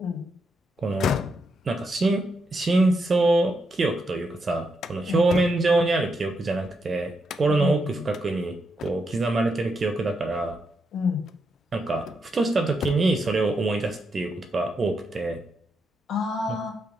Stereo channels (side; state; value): both; normal; correlation 0.82